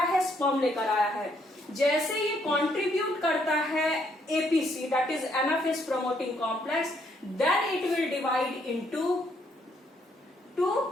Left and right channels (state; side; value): normal; both; correlation 0.71